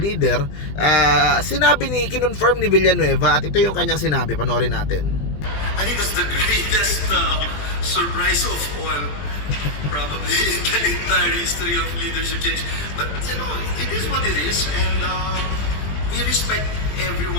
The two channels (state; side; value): late; right; 20 ms